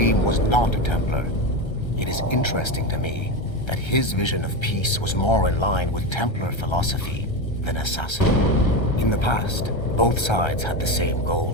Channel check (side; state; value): right; late; 1.3 ms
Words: was not a Templar, it is interesting to me that his vision of peace was more in line with Templar philosophy than assassin. In the past, both sides had the same